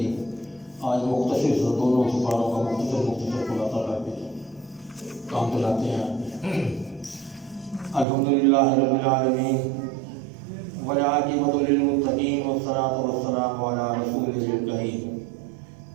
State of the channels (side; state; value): left; drops out; at 8.1 s